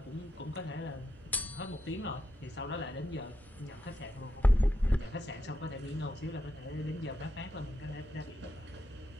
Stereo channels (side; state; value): both; normal; correlation 0.85